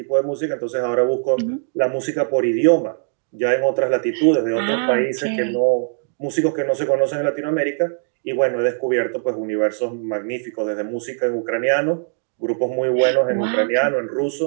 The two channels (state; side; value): silent; left; digital silence